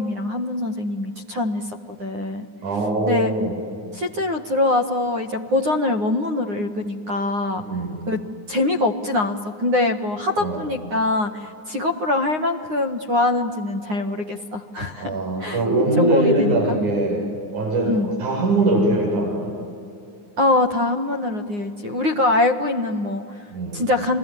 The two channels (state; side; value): late; left; 9.7 ms